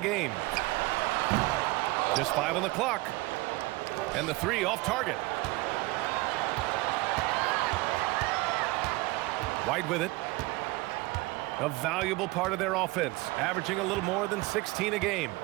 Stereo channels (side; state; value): left; quieter; 22.1 dB